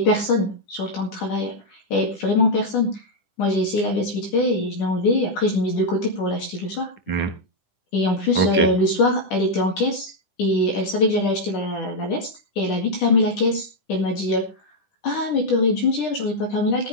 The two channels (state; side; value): late; right; 10 ms